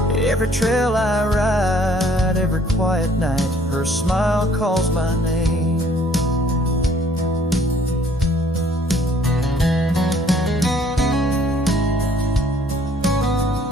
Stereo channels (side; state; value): both; normal; correlation 0.60